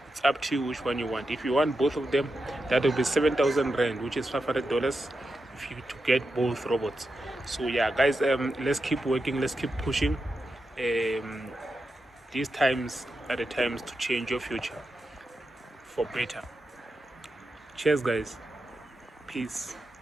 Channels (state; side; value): normal; both; correlation 0.88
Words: It's up to you which one you want. If you want both of them, that will be 7,000 rand, which is $500 if you to get both robots. So yeah, guys, let's keep working, let's keep pushing. These times are the times to change your future for better. Cheers, guys. Peace